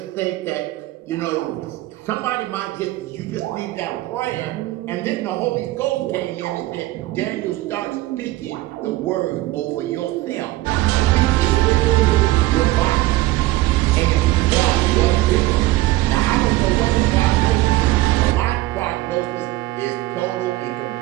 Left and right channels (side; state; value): left; quieter; 17.7 dB